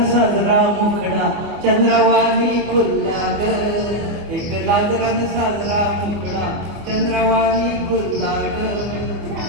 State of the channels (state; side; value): late; left; 25 ms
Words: साजरा मुखडा चंद्रवाणी खुल्ला ग. एक लाजरान साजरा मुखडा चंद्रवाणी खुल्ला ग.